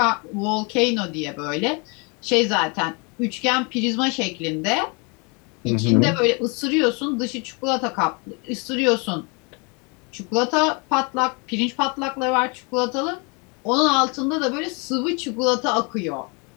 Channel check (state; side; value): quieter; right; 31.9 dB